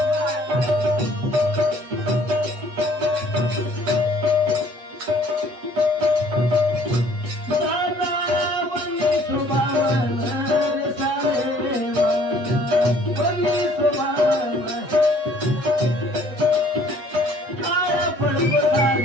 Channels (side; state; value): left; late; 7.9 ms